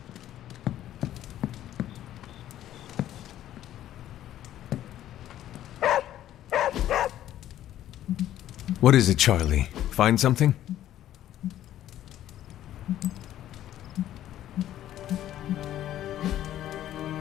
What is it, Charlie? Find something?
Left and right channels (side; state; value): right; quieter; 12.4 dB